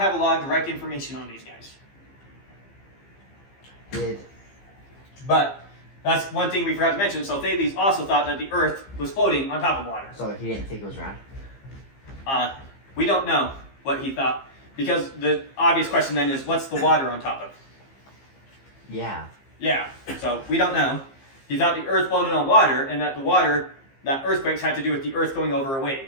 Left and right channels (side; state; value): right; late; 15 ms